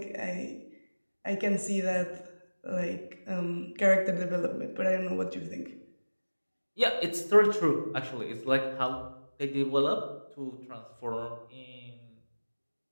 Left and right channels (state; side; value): inverted; both; correlation -1.00